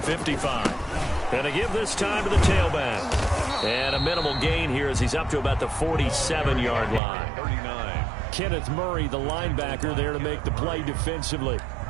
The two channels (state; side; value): drops out; left; at 7.0 s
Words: 55. And to give this time to the tailback. And a minimal gain here as he's up to about the 47-yard line. 39. Kenneth Murray, the linebacker, there to make the play defensively.